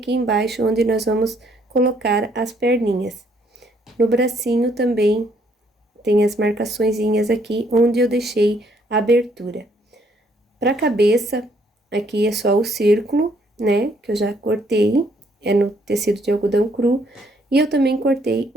embaixo, onde nós vamos colocar as perninhas. No bracinho também tem as marcaçõezinhas aqui, onde eu deixei a abertura. Pra cabeça, aqui é só o círculo, né, que eu já cortei, é no tecido de algodão cru. E eu também cortei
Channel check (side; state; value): both; normal; correlation 0.68